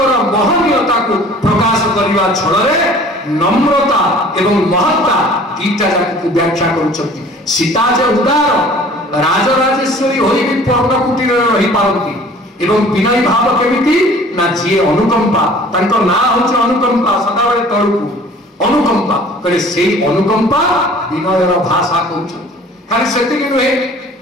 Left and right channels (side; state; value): both; normal; correlation 0.49